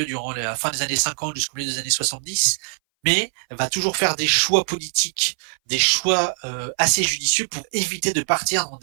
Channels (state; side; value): silent; left; 61 dB below the other